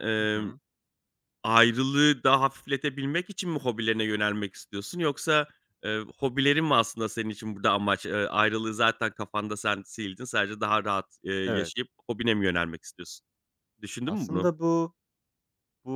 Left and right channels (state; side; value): identical; both; correlation 1.00